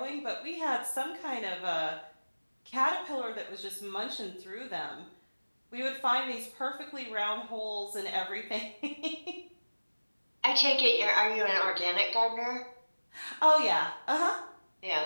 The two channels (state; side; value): inverted; both; correlation -1.00